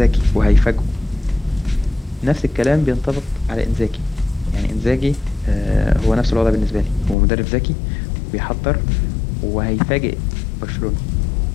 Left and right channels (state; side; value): drops out; right; at 7.2 s